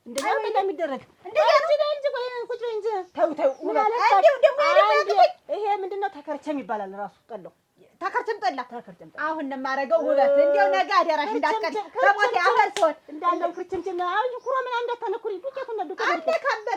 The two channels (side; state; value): both; identical; correlation 1.00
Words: እንደዚህ ነው የሚደረግ። እንደዚህ እንጂ ቆይ ቁጭ በይ እንጂ ተው ምን አለ ይሄ ምንድነው ተከርቸም ይባላል ራሱ ጠላው ተከርቸም ጠላ አሁን ነው የማደርገው ውበት እንደው ነገ አደራሽ እንዳትቀር ከሞት ያፈር ሰው እንዳለው ክርችምችም አሁን ኩሮ ምን እንዳታነኩሪ ዱቄቱ ነው